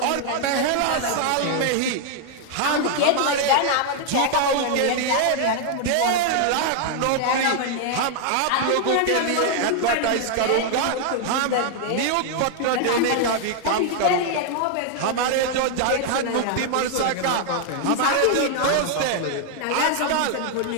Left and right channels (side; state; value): both; different; correlation 0.00